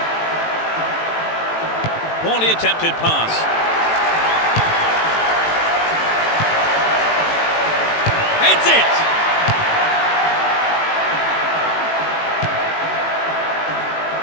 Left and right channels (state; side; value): late; right; 18 ms